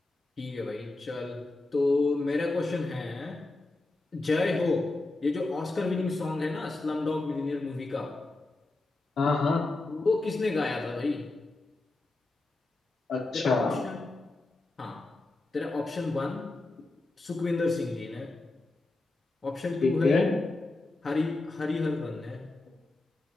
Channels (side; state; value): right; quieter; 3.0 dB